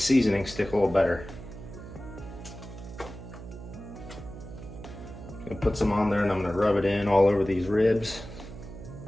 seasoning stick a little better. I'm going to put some on there and I'm going to rub it in all over these ribs.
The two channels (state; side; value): noise; right; hum, 13 dB below the sound